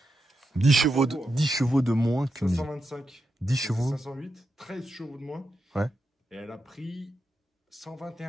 10 chevaux de moins que 525. 10 chevaux. 508. 13 chevaux de moins. Ouais. Et elle a pris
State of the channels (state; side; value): normal; both; correlation 0.86